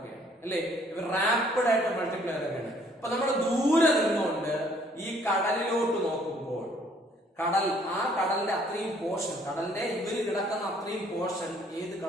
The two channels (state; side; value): normal; both; correlation 0.62